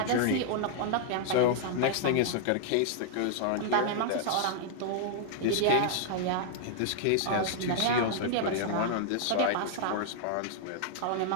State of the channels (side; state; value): both; different; correlation -0.01